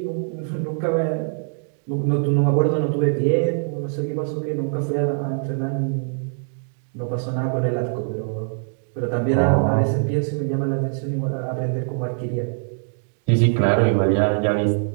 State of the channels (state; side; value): silent; left; digital silence